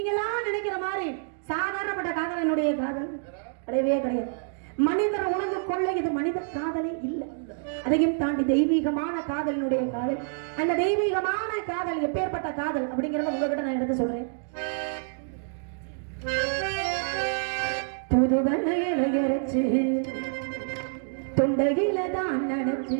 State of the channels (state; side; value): silent; left; digital silence